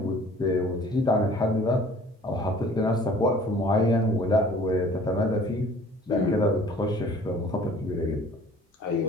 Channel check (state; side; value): normal; both; correlation 0.51